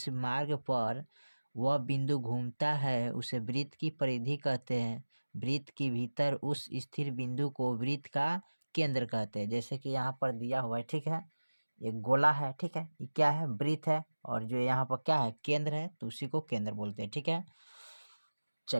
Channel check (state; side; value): inverted; both; correlation -1.00